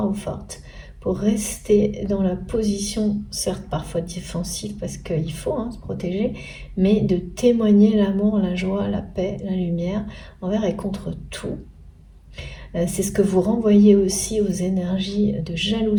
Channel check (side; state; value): both; identical; correlation 1.00